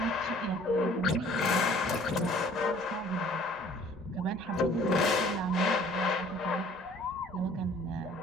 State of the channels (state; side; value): normal; both; correlation 0.54